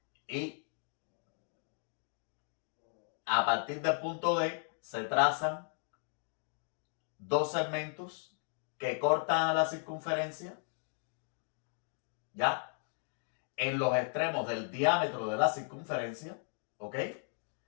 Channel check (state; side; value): silent; right; 54 dB below the other